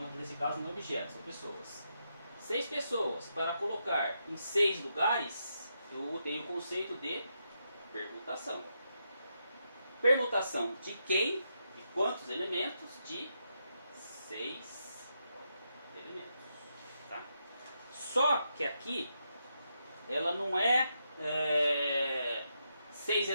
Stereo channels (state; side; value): inverted; both; correlation -0.82